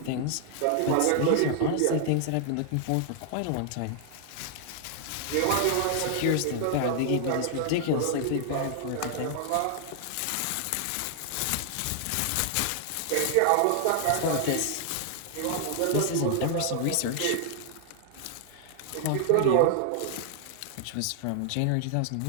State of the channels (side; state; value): both; different; correlation 0.00